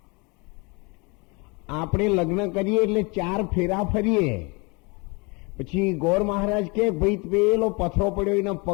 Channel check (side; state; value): right; quieter; 28.9 dB